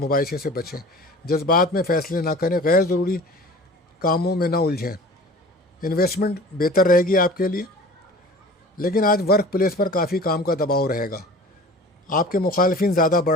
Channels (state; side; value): normal; both; correlation 0.41